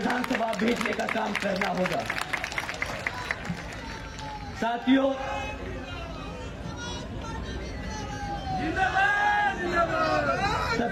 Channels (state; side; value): identical; both; correlation 1.00